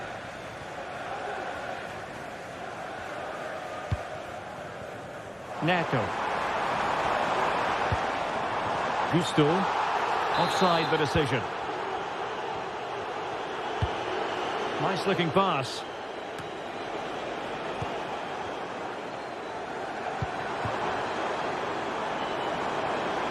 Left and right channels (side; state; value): both; identical; correlation 1.00